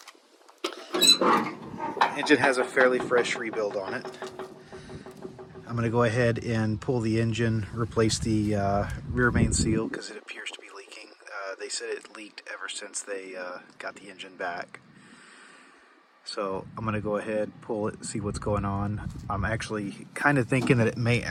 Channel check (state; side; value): identical; both; correlation 1.00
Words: Engine has a fairly fresh rebuild on it. I'm going to go ahead and pull the engine, replace the rear main seal because it appears to be leaking. They said it leaked ever since they got the engine back. So I'm going to go ahead, pull it, see what's going on. I'm actually kind of thinking that it may